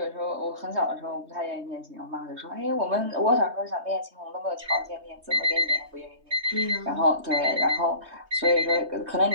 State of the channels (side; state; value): left; late; 3.2 ms